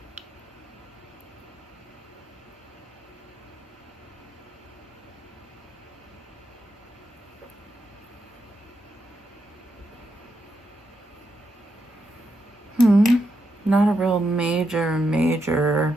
Not a real major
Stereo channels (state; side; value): normal; both; correlation 0.83